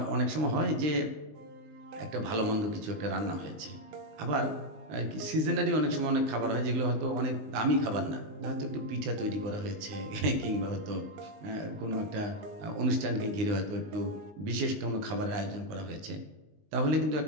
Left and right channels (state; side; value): late; left; 19 ms